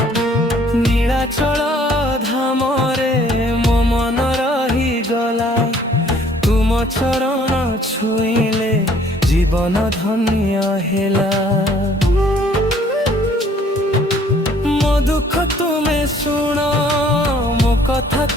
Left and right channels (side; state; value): both; normal; correlation 0.59